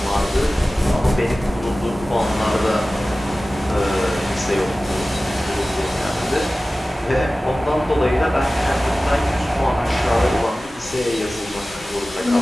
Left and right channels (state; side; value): normal; both; correlation 0.97